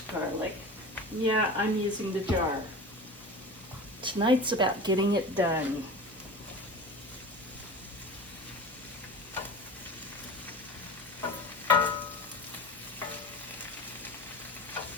garlic. Yeah, I'm using the jar. Tonight's about getting it done.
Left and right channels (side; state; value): both; normal; correlation 0.33